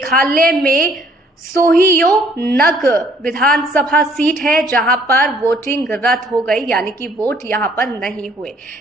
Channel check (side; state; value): both; normal; correlation 0.61